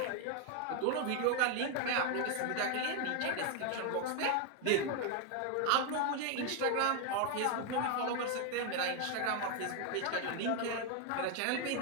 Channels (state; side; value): different; both; correlation 0.01